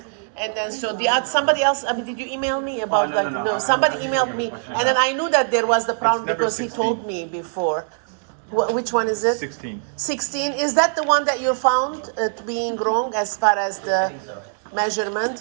And then so somebody else. I mean, did you email me about No. Somebody emailed me, and then I knew that there was the problem because 16. he told me before. Which one is it? 16. 16. Is that the one that you found being wrong as far as the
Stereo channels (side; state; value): left; silent; 64 dB below the other